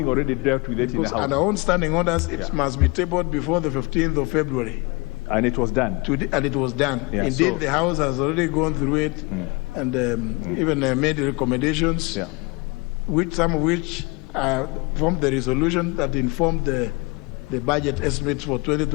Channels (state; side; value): quieter; right; 26.4 dB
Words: already dealt with it in the House. On our own standing orders, it must be tabled before the 15th of February. And it was done. And it was done. Yeah, Indeed, the House has already gone through it and even made recommendations, some of which formed the resolution that informed the budget estimates for